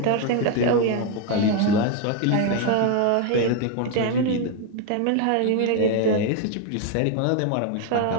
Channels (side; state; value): both; different; correlation 0.01